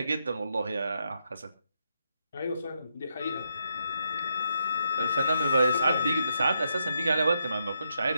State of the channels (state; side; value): inverted; both; correlation -0.80